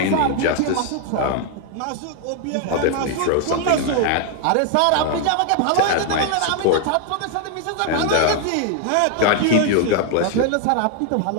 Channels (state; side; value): different; both; correlation 0.00